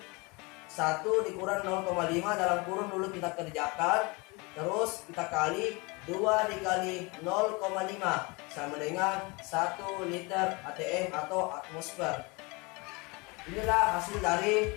1 dikurang 0,5 dalam kurun dulu kita kerjakan. Terus kita kali 2 dikali 0,5 sama dengan 1 liter atm atau atmosfer. Inilah hasil dari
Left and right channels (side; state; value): right; quieter; 27.3 dB